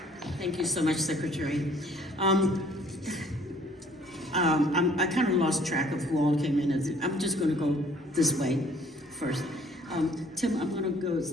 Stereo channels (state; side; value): normal; both; correlation 0.57